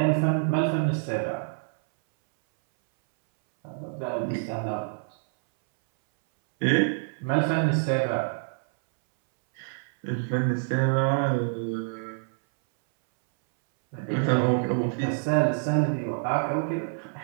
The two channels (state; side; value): silent; left; 60 dB below the other